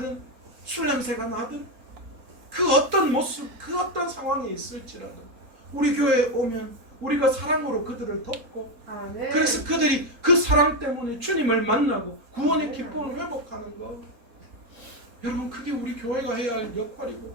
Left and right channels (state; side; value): late; left; 4.3 ms